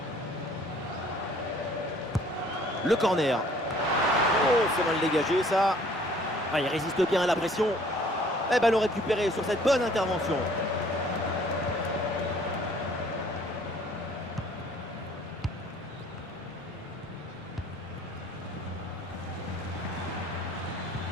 Le corner. Oh, c'est mal dégagé ça. Ah, il résiste bien à la pression. Et ballon récupéré sur cette bonne intervention.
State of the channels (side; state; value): both; normal; correlation 0.56